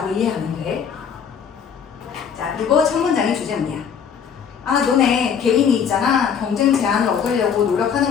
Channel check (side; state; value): right; quieter; 7.3 dB